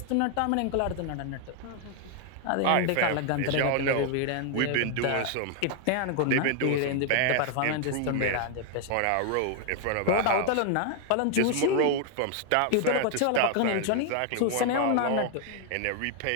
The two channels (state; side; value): different; both; correlation 0.00